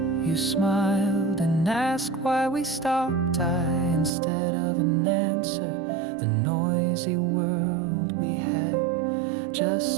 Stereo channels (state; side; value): drops out; left; at 4.1 s